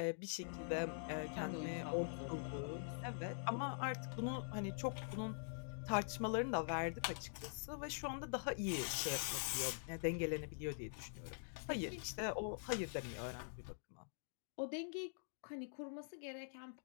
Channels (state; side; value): silent; right; digital silence